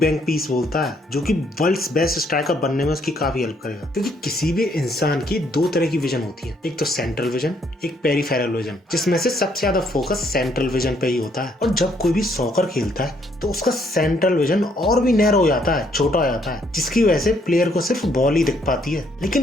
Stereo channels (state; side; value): normal; both; correlation 0.69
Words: पीस बोलता है, जो कि वर्ल्ड्स बेस्ट स्ट्राइकर बनने में उसकी काफी हेल्प करेगा। क्योंकि किसी भी इंसान की 2 तरह की विजन होती है, एक तो सेंट्रल विजन, एक पेरिफेरल विजन, जिसमें से सबसे ज्यादा फोकस सेंट्रल विजन पे ही होता है। और जब कोई भी सॉकर खेलता है तो उसका सेंट्रल विजन और भी नैरो हो जाता है, छोटा हो जाता है, जिसकी वजह से प्लेयर को सिर्फ बॉल ही दिख पाती है।